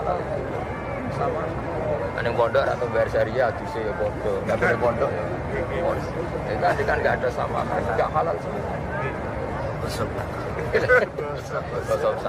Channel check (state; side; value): identical; both; correlation 1.00